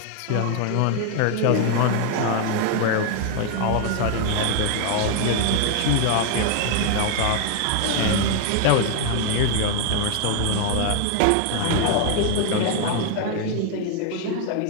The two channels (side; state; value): both; different; correlation 0.00